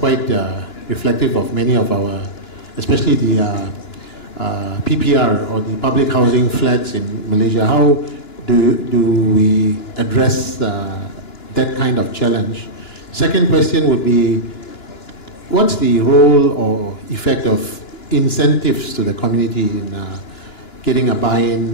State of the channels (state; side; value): late; right; 2.9 ms